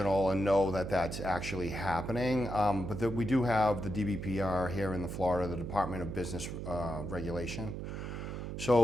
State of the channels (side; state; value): right; noise; hum, 6 dB below the sound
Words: and know that that's actually happening. But we do have the DBPR here in Florida, the Department of Business Regulation.